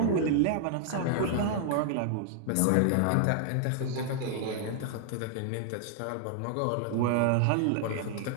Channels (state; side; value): different; both; correlation -0.01